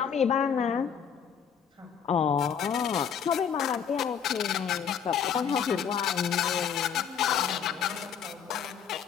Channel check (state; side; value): quieter; right; 7.7 dB